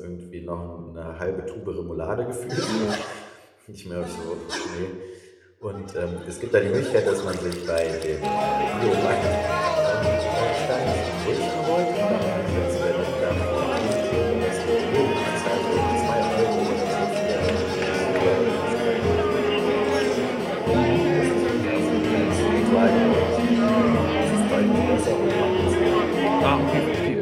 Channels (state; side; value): identical; both; correlation 1.00